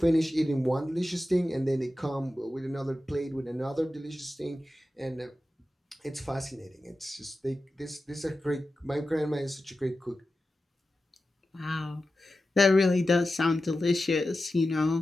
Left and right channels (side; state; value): both; normal; correlation 0.93